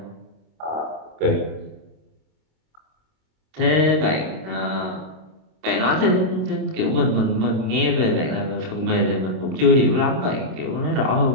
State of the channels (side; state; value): left; late; 26 ms